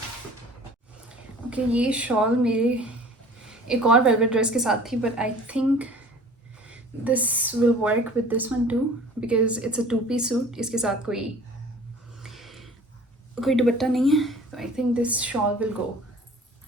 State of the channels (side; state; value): both; normal; correlation 0.47